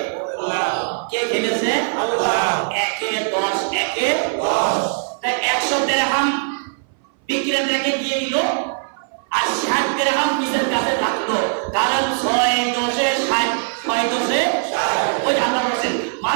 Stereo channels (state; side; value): silent; left; 59 dB below the other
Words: কে খেলেছে? আল্লাহ। 1-10 1-10 তাই 100 দিরহাম বিক্রেতাকে দিয়ে দিল, আর 60 দিরহাম নিজের কাছে রাখলো। কারণ 6-10-60 6-10-60 ওই আল্লাহ বলেন